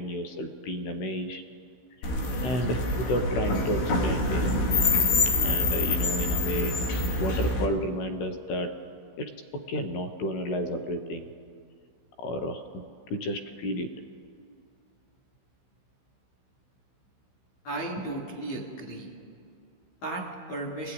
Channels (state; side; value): late; right; 16 ms